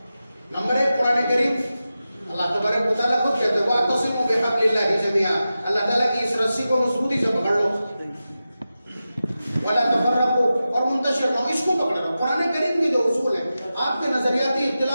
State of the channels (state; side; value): inverted; both; correlation -0.93